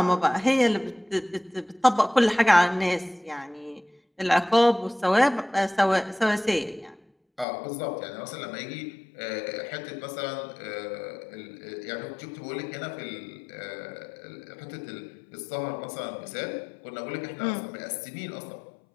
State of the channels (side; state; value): right; drops out; at 7.5 s